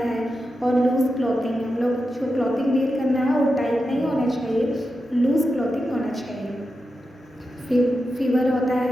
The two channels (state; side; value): normal; both; correlation 0.89